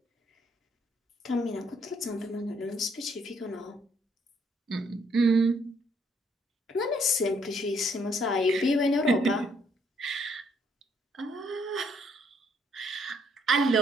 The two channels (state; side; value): normal; both; correlation 0.69